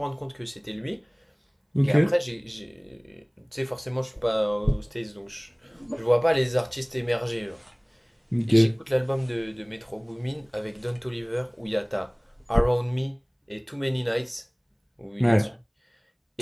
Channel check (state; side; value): identical; both; correlation 1.00